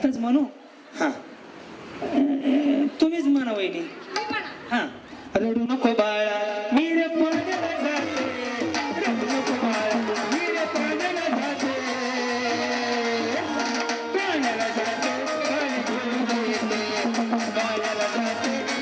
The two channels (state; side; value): identical; both; correlation 1.00